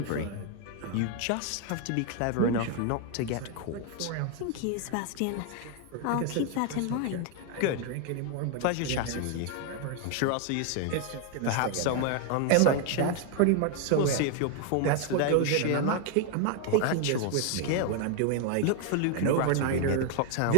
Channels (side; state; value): both; different; correlation 0.00